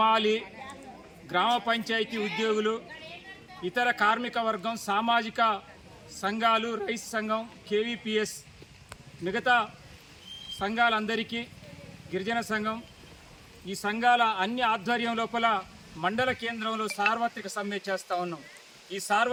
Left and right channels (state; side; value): identical; both; correlation 1.00